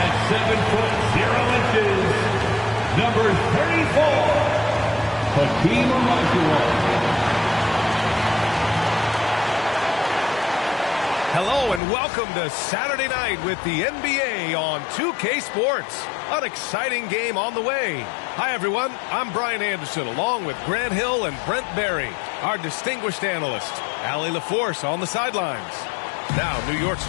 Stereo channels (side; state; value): right; drops out; at 11.8 s